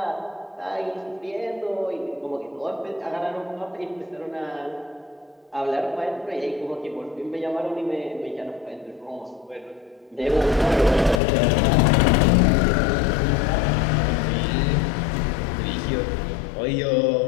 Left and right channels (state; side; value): drops out; right; at 11.2 s